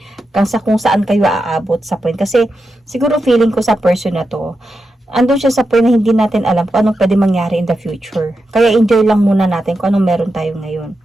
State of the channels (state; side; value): normal; both; correlation 0.88